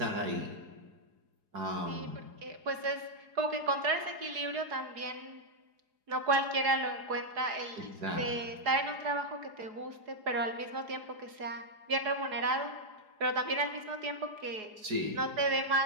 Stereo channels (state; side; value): late; left; 4.8 ms